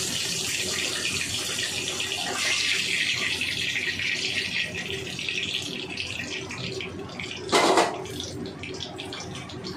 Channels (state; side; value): noise; right; rumble, 30 dB below the sound